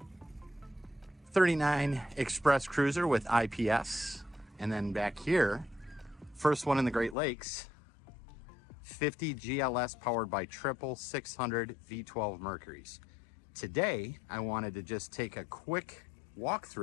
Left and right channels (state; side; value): drops out; right; at 7.2 s